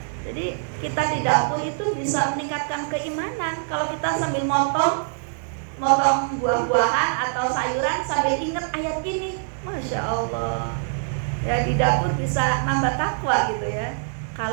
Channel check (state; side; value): silent; left; digital silence